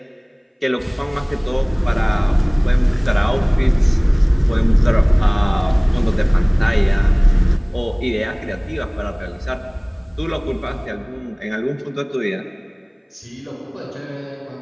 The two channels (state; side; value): identical; both; correlation 1.00